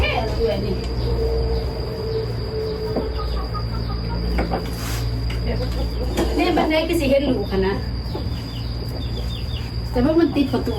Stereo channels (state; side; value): identical; both; correlation 1.00